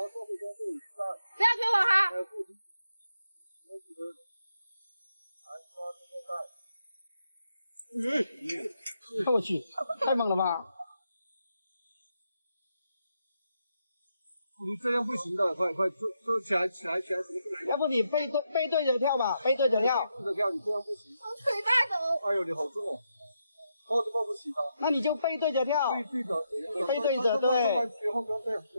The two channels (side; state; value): both; inverted; correlation -0.81